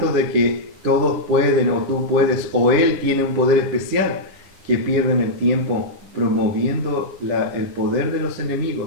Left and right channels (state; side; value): late; left; 9.9 ms